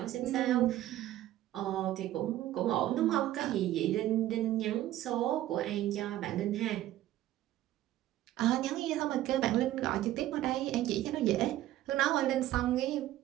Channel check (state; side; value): quieter; left; 14.1 dB